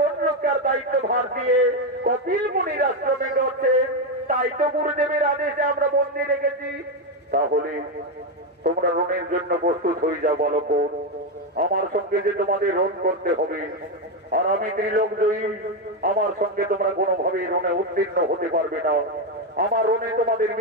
রক্ষার দায়িত্ব ভার দিয়ে কপিল মুনির আশ্রমে করছেন। তাই তো গুরুদেবের আদেশে আমরা বন্দি রেখেছি। তাহলে তোমরা রণের জন্য প্রস্তুত হয়ে যাও বালক। আমার সঙ্গে যে তোমাদের রণ করতে হবে, আর আমি ত্রিলোকজয়ী, আমার সঙ্গে তোমরা কোনোভাবে রণে উত্তীর্ণ হতে পারবে না। আমার রণে তোমাদের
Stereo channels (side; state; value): both; normal; correlation 0.08